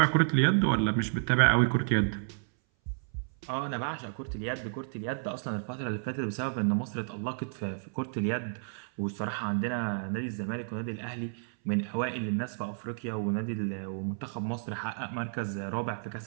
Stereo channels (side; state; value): left; silent; 57 dB below the other